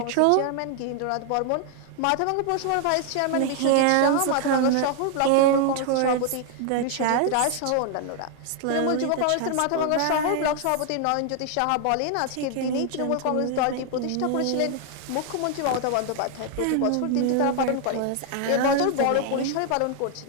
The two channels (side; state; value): both; different; correlation 0.00